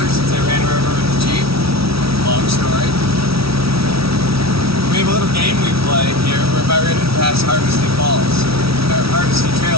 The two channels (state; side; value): late; left; 0.76 ms